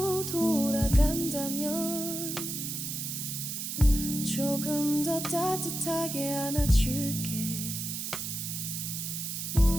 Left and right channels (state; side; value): noise; right; hiss, 4 dB below the sound